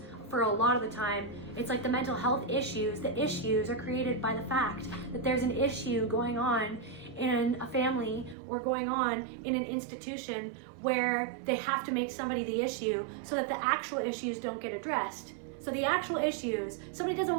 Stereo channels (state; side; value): drops out; left; at 8.3 s